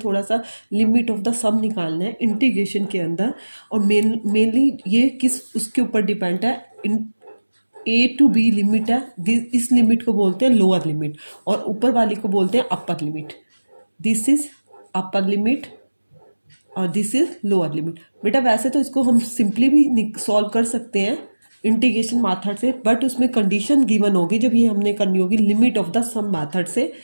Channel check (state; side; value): inverted; both; correlation -1.00